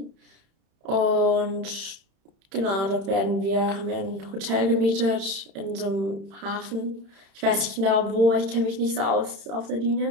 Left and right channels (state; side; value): late; left; 31 ms